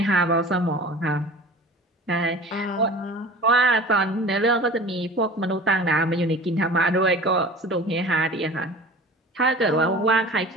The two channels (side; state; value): both; normal; correlation 0.40